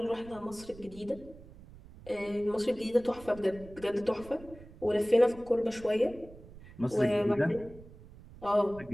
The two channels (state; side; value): noise; right; rumble, 19 dB below the sound